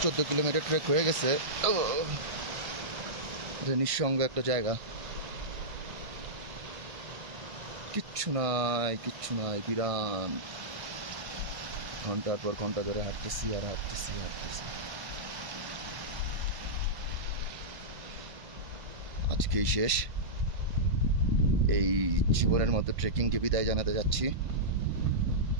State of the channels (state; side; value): late; left; 1.5 ms